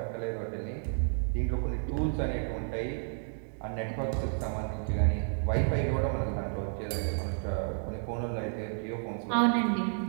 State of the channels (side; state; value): left; silent; digital silence